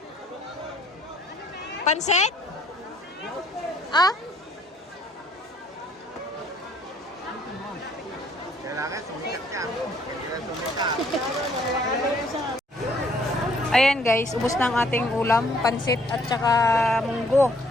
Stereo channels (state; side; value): normal; both; correlation 0.63